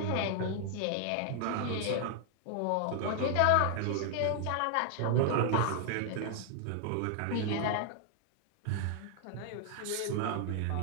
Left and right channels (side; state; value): both; different; correlation 0.00